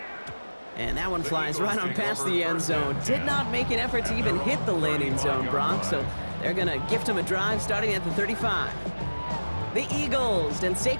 And that one flies right on past the end zone. Did not make an effort to even hit the landing zone, Brock, so they're going to gift him a drive starting at the 35. The Eagles and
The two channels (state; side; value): inverted; both; correlation -1.00